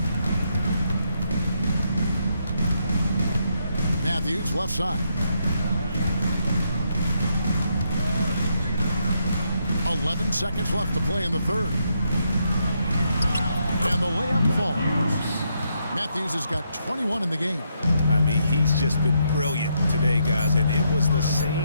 Matthews left side. 11 seconds left to play in the 3rd. And the layup falls. Matthews has got 21 in the game. I mean, he's just been brilliant today, guys, and it was the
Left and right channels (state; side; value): inverted; both; correlation -0.78